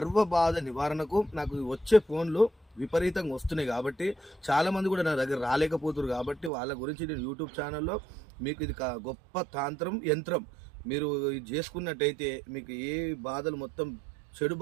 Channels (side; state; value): left; drops out; at 6.5 s